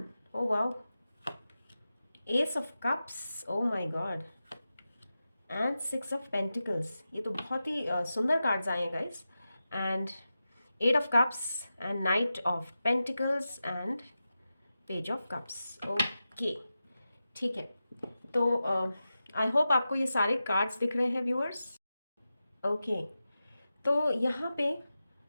oh wow, ace of cups, oh my god, and 6 of pentacles। ये तो बहुत ही सुंदर cards आए हैं guys. And 8 of cups and knight of pentacles and page of cups। Okay, ठीक है, तो I hope आपको ये सारे कार्ड्स दिख रहे हैं व्यूअर्स। ओके, तो यहाँ पे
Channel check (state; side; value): inverted; both; correlation -0.92